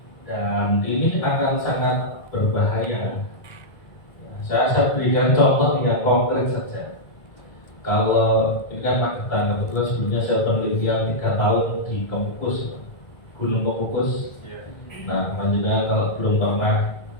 dan ini akan sangat berbahaya. Saya berikan contoh yang konkret saja. Kalau ini kan Magetan, kebetulan sebelumnya saya penelitian 3 tahun di Kemukus, Gunung Kemukus. Nah, lanjutnya kalau belum pernah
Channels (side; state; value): right; late; 1.8 ms